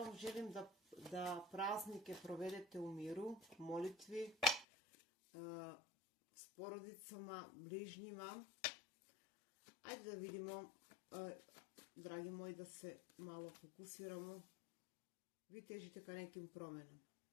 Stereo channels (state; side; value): drops out; right; at 4.7 s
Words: želim da praznike provedete u miru, molitvi, s porodicama, bližnjima. Ajde da vidimo, dragi moji, da se malo fokusiramo. Vi težite ka nekim promjenama.